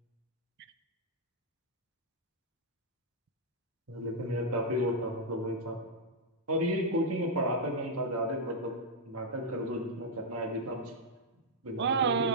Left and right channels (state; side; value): normal; both; correlation -0.04